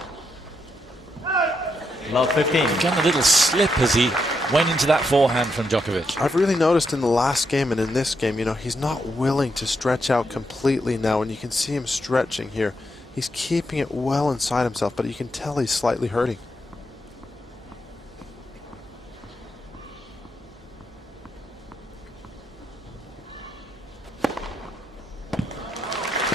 Love 15. He got a little slip as he went into that forehand from Djokovic. I've really noticed in the last game and in this game, you know, he's not willing to stretch out completely now, and you can see him stretching here. He's keeping it well inside himself, but you can tell he's slightly hurting.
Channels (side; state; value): both; normal; correlation 0.81